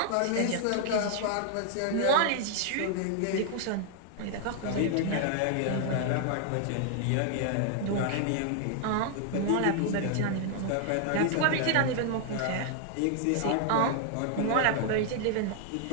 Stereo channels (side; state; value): both; different; correlation 0.00